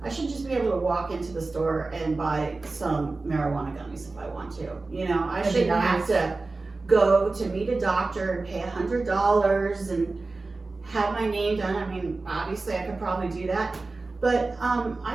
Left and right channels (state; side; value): quieter; left; 3.5 dB